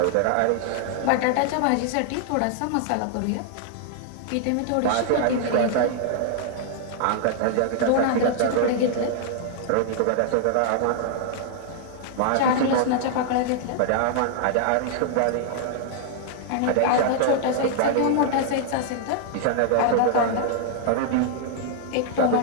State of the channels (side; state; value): both; different; correlation -0.01